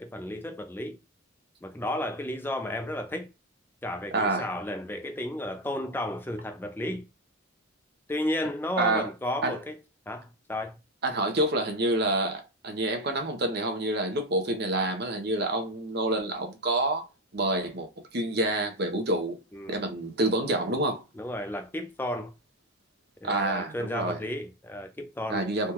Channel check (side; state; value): both; normal; correlation 0.12